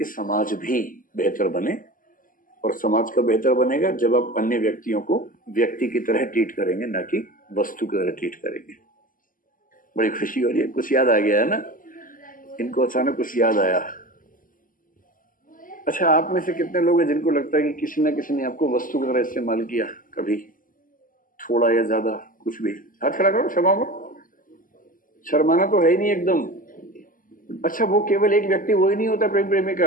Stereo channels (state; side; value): late; right; 0.40 ms